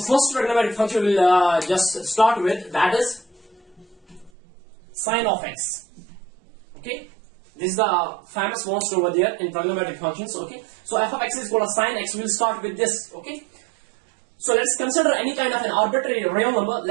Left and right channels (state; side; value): drops out; left; at 4.3 s